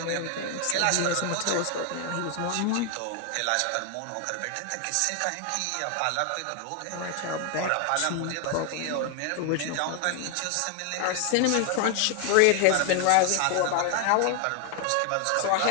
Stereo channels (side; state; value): both; different; correlation 0.01